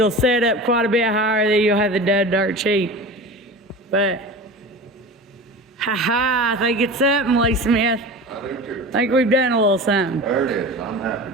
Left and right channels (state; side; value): normal; both; correlation 0.33